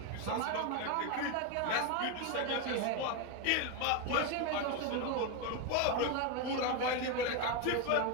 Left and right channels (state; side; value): different; both; correlation 0.02